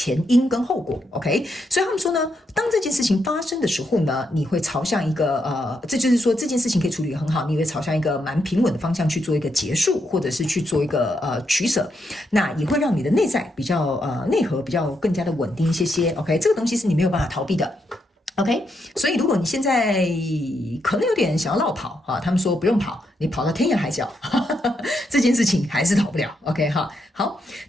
因跟後果 ，OK？ 所以他們說呢，當這件事情發生的時候呢，你會朝向一個這就是說這件事情可以處理得很好，你會朝向一個蠻平穩的方向去做一個結束，或者是去做一個取捨，那也會讓你的內在比較內核比較更加的穩定一些 ，OK？ 這個東西是你沒有辦法逃避的。OK， 所以如果你現在可能有點想要落跑他們說不用跑，你跑到天涯海角，這件事情還是逃不了。OK 哈，好，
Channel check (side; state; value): both; normal; correlation 0.80